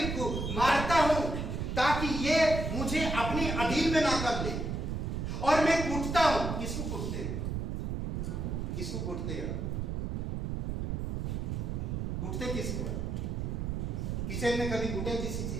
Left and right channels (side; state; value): right; noise; rumble, 2 dB below the sound